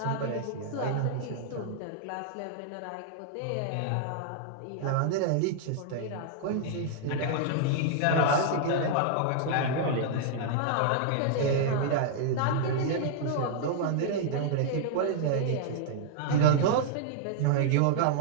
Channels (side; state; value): both; different; correlation -0.01